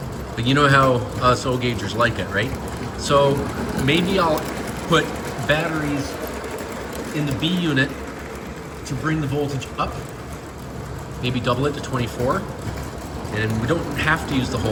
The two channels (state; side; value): identical; both; correlation 1.00